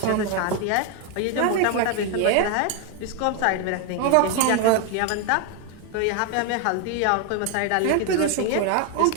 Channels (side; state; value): both; different; correlation 0.01